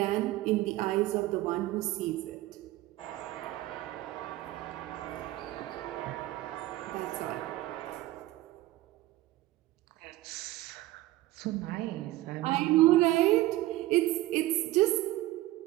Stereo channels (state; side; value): quieter; left; 16.8 dB